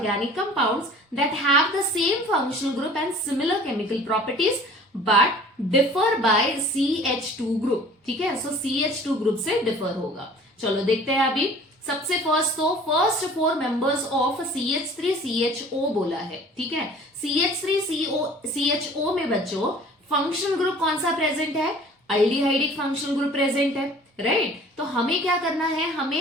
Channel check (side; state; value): both; normal; correlation 0.48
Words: compounds that have the same functional group and similar chemical properties but differ by CH2 group, ठीक है। सो CH2 ग्रुप से डिफर होगा। चलो देखते हैं अभी। सबसे फर्स्ट तो फर्स्ट 4 मेंबर्स ऑफ CH3CHO बोला है, ठीक है। CH3CHO में बच्चों फंक्शनल ग्रुप कौन सा प्रेजेंट है, अल्डिहाइडिक फंक्शनल ग्रुप प्रेजेंट है, राइट। तो हमें क्या करना है,